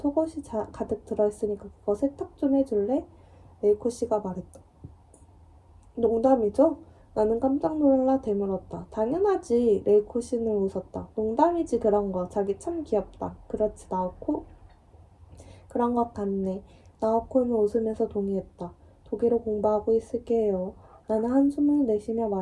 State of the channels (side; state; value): both; identical; correlation 1.00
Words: 가득 들어있으니까 그거 세탁 좀 해줄래? 레이코 씨가 말했다. 농담이죠? 나는 깜짝 놀라 되물었다. 당연하지. 레이코 씨는 웃었다. 농담이지 그런 거. 자기 참 귀엽다. 그렇지 나오코? 그런 것 같네. 나오코는 웃으면서 동의했다. 독일어 공부하고 있을게요. 나는 한숨을 내쉬며